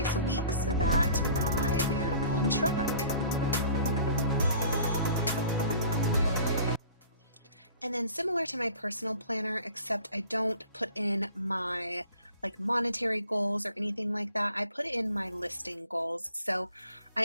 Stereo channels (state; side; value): inverted; both; correlation -0.48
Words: a week so that I am on track. And then similar to my personal planner, except I don't put in my monetary goals or anything like that. I put in my listing goals. So I